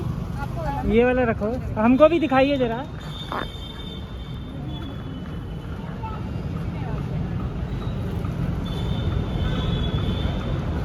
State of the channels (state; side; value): identical; both; correlation 1.00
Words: ये वाला रखो, हमको भी दिखाइए जरा।